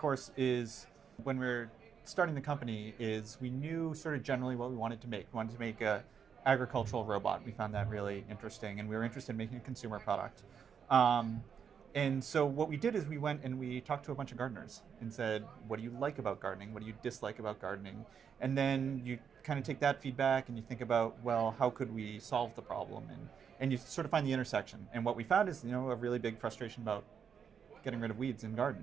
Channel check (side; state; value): left; quieter; 7.2 dB